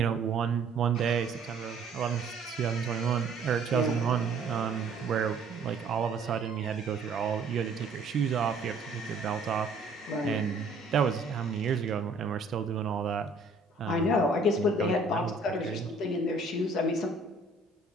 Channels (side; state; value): left; quieter; 3.4 dB